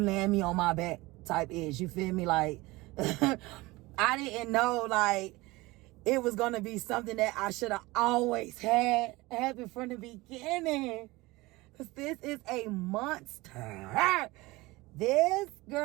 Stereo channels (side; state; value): left; quieter; 21.3 dB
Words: me on my back type ish. You feel me? Like, I didn't know, like, it was gonna be something that I should have always had happen from the beginning. Cause this is a monster. This